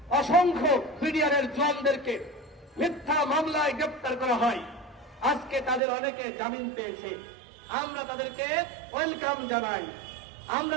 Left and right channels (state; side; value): drops out; left; at 5.8 s